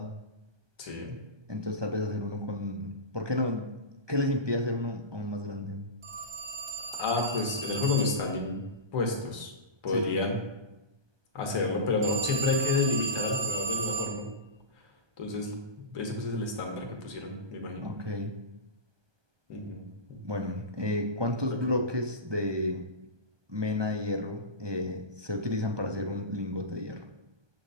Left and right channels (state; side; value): late; left; 1.2 ms